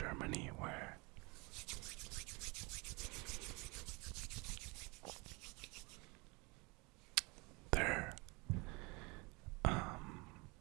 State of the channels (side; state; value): left; quieter; 27.5 dB